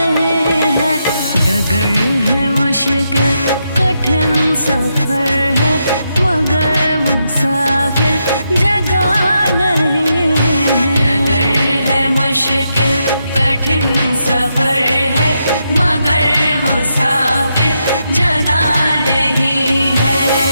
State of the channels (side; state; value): both; inverted; correlation -0.82